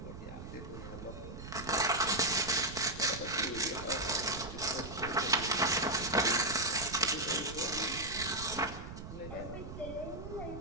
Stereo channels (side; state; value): right; noise; rumble, 11 dB below the sound